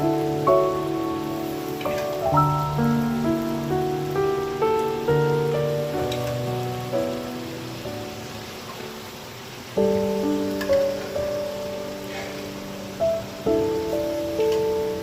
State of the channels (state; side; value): identical; both; correlation 1.00